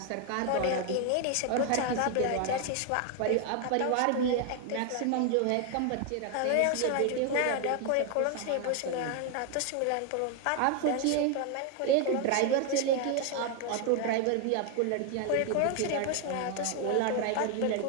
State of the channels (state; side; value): different; both; correlation 0.01